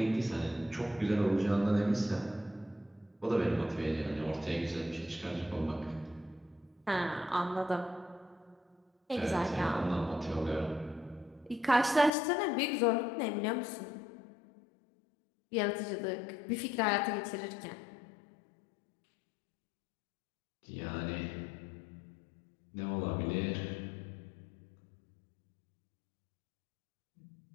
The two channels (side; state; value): right; drops out; at 12.1 s